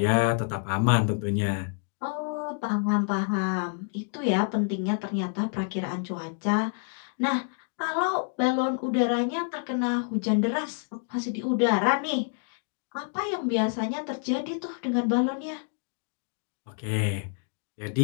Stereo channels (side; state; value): right; silent; 59 dB below the other